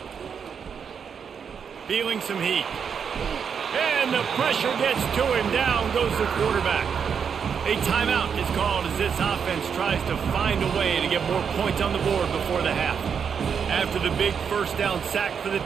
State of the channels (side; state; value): left; quieter; 6.9 dB